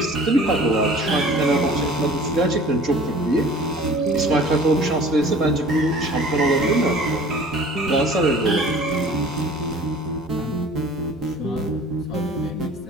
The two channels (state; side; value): normal; both; correlation 0.47